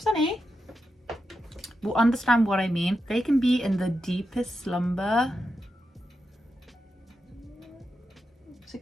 Will understand what I mean. They can be in the deepest slumber. It's a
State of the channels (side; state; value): both; normal; correlation 0.87